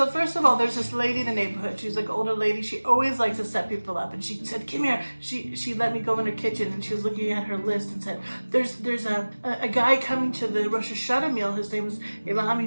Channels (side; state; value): both; inverted; correlation -1.00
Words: first of all, there's this lady in the neighborhood. She's like an older lady. She always likes to set people up. And she said, "Come here." She let me go in her kitchen, and she was looking at her list and said, "There's a guy coming to the Rosh Hashanah meal. His name is Aylam.